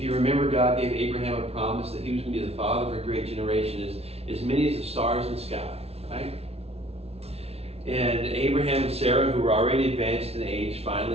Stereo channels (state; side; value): late; left; 0.30 ms